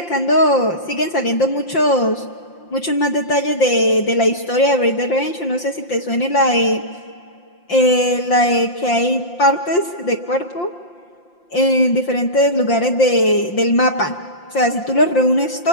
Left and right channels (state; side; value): late; right; 5.7 ms